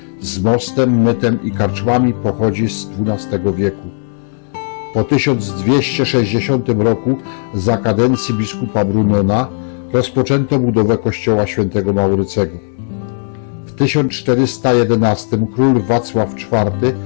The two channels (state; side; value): silent; right; digital silence